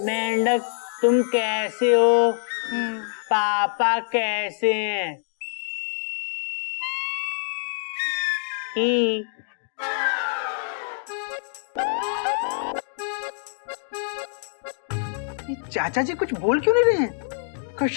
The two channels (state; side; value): silent; right; digital silence